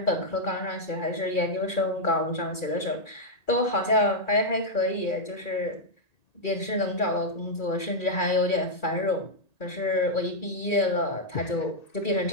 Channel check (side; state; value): right; late; 1.9 ms